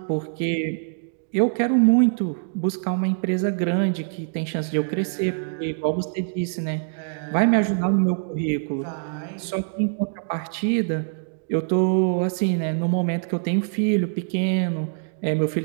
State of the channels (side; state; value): left; silent; digital silence